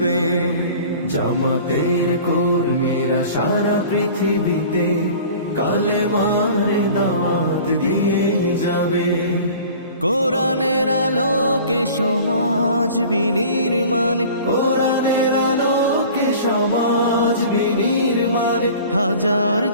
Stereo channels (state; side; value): inverted; both; correlation -0.43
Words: জামাতের কর্মীরা সারা পৃথিবীতে কালেমার দাওয়াত দিয়ে যাবে। কোরআনের আলোকে সমাজ বিনির্মাণ, কোরআনের আলোকে সমাজ বিনির্মাণ, হাজার